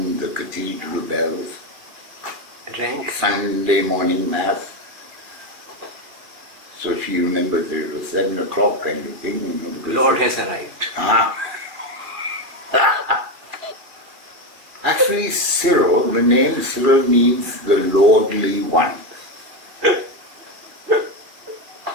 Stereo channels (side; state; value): left; late; 2.3 ms